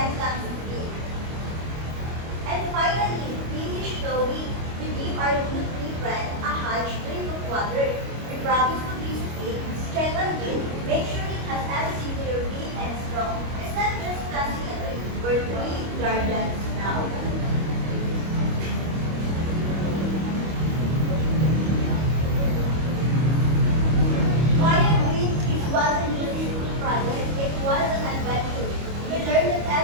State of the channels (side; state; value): left; late; 25 ms